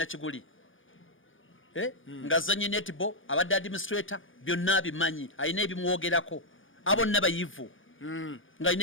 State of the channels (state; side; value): late; right; 0.57 ms